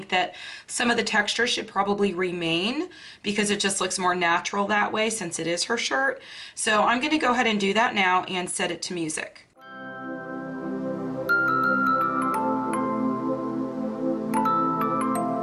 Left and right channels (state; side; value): identical; both; correlation 1.00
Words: that some of the texture should probably remain because it just looks more natural that way since it is her shirt. So I'm going to go ahead and do that now and set it to music.